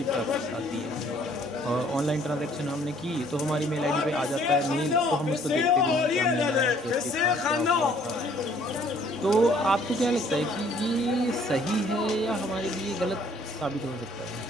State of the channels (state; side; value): normal; both; correlation 0.60